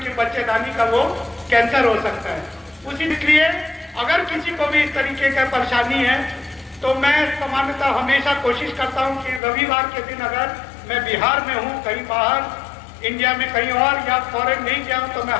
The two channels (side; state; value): right; drops out; at 9.4 s